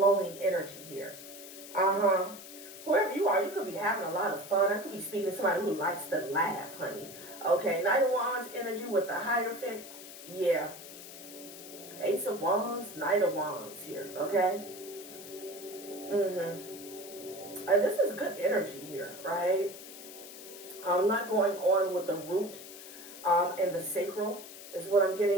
energy here. Whoever you are, you could be having a lot of fun. I could be speaking to somebody who likes to laugh, honey. Okay, Knight of Wands energy with the Hierophant. Yeah. Ace of Wands, Knight of Wands here, okay? This is good energy here, right? I'm not going on with the root and the sacral is what I'm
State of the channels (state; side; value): noise; left; hiss, 14 dB below the sound